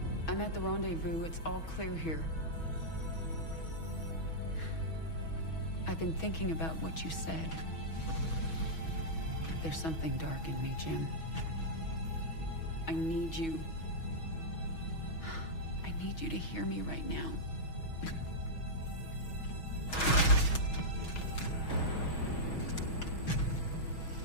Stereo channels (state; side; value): late; right; 6.2 ms